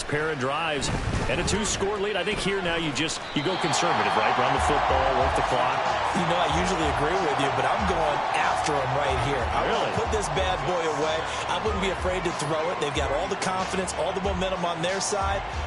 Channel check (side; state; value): both; identical; correlation 1.00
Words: pair of drives and a 2-score lead. I think here now you go conservative, right? Run the football, work the clock. You know, I usually agree with you, but I'm going after him right here. I want to put this bad boy away. I wouldn't be afraid to throw it. They've got all the confidence, all the momentum on their side.